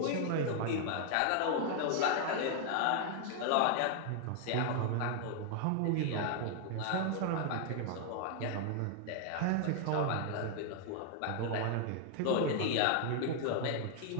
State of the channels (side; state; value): both; different; correlation 0.00